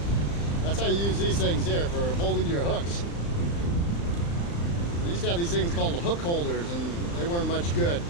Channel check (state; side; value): late; right; 35 ms